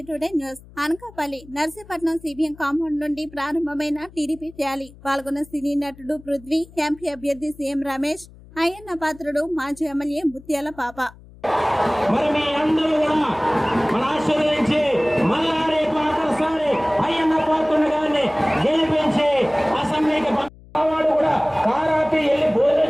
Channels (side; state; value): left; noise; hum, 22 dB below the sound